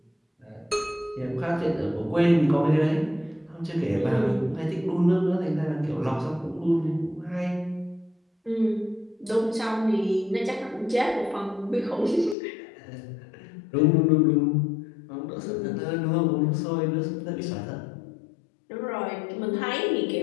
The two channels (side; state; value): right; drops out; at 12.4 s